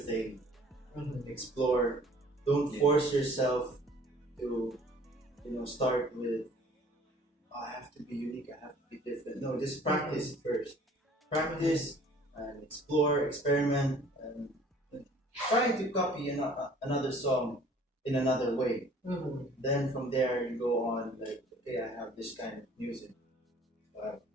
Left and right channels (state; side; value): normal; both; correlation 0.53